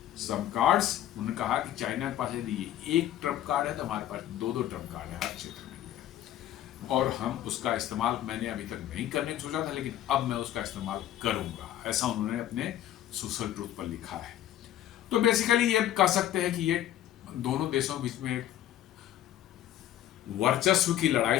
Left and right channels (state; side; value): quieter; right; 12.4 dB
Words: some cards. उन्होंने कहा कि चाइना के पास यदि एक ट्रम्प कार्ड है तो हमारे पास 2 ट्रम्प कार्ड है हर क्षेत्र में, और हम उसका इस्तेमाल मैंने अभी तक नहीं करने को सोचा था, लेकिन अब मैं उसका इस्तेमाल करूंगा, ऐसा उन्होंने अपने सोशल ट्रूथ पर लिखा है। तो बेसिकली ये कह सकते हैं कि ये दोनों देशों के बीच में वर्चस्व की